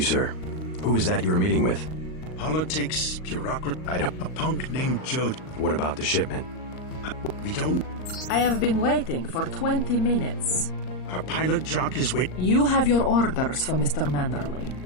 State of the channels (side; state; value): right; late; 38 ms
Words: sir. Who was that you were meeting with? Politics, bureaucracy. I don't... A punk named Joe. What about the shipment? We don't... I have been... Our pilot Jock is waiting. You have your orders for Mr.